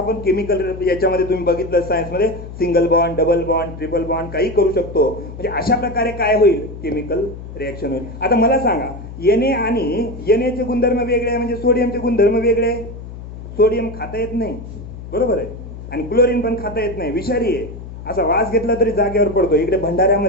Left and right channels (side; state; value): left; noise; hum, 12 dB below the sound